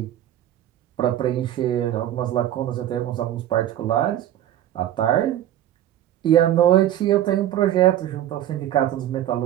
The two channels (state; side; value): quieter; left; 12.1 dB